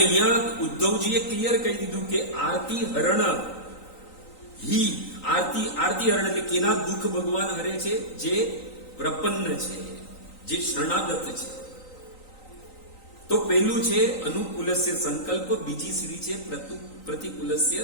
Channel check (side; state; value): right; late; 3.9 ms